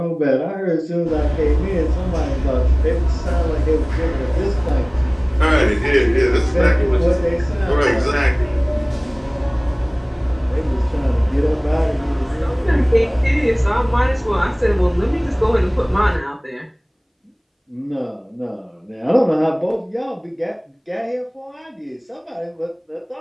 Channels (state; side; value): identical; both; correlation 1.00